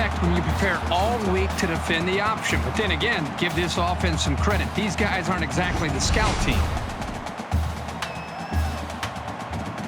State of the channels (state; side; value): identical; both; correlation 1.00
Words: when you prepare all week to defend the option. But then again, give this offense some credit. These guys aren't exactly the scout team.